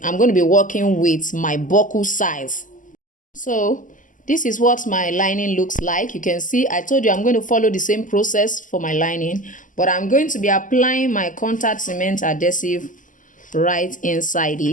I'm going to be working with my buckle size. So this is what my lining looks like. You can see I told you I'm going to follow the same process for my lining, but I'm going to be applying my contact cement adhesive right inside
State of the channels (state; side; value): late; right; 0.38 ms